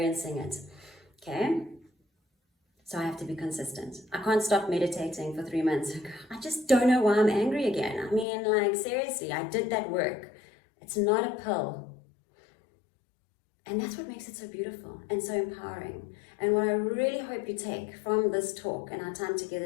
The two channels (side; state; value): right; drops out; at 8.2 s